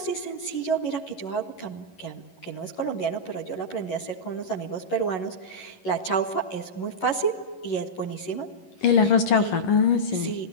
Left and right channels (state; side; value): late; right; 11 ms